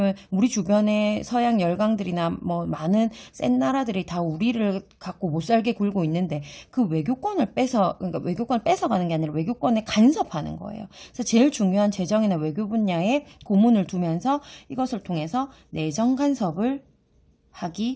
우리 주변에 서양 열강들이나 뭐 많은 센 나라들이 다 우리를 갖고 못 살게 굴고 있는데 그 외교권을 그러니까 외교권을 뺏어가는 게 아니라 외교권에 간섭하는 거예요. 그래서 제일 중요한 재정이나 외교 분야에 고문을 두면서 이것을 통해서 내정 간섭을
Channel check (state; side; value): identical; both; correlation 1.00